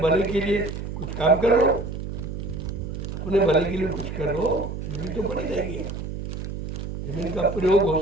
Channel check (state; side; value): noise; right; hum, 6 dB below the sound